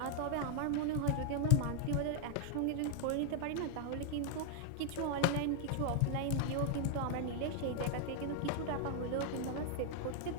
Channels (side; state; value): both; different; correlation 0.00